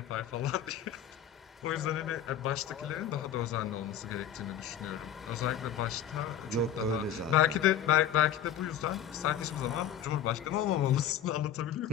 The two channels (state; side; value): quieter; right; 9.6 dB